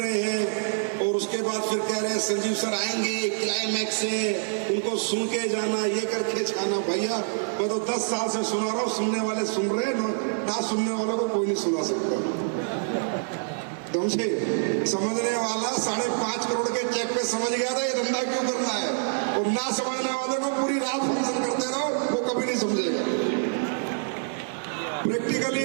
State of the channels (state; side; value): silent; left; digital silence